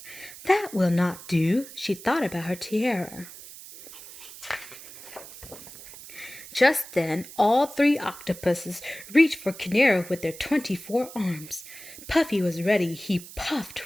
"That will not do." She thought about her tiara. Just then, all three octopuses reached for Canaro with their 24 arms. Puffy was ready. He puffed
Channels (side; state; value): right; noise; hiss, 16 dB below the sound